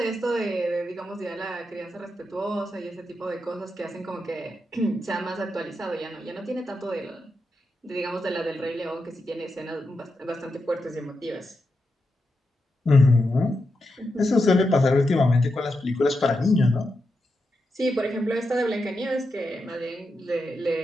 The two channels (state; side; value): normal; both; correlation 0.87